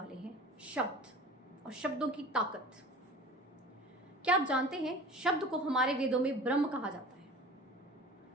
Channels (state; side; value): normal; both; correlation 0.40